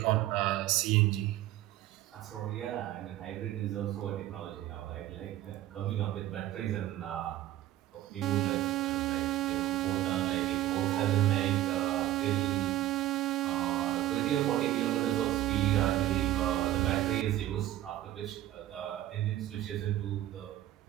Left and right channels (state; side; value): quieter; left; 14.1 dB